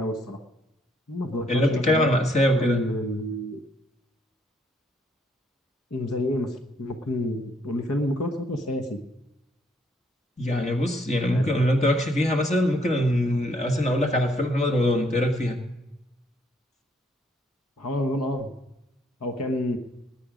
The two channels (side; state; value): both; normal; correlation 0.69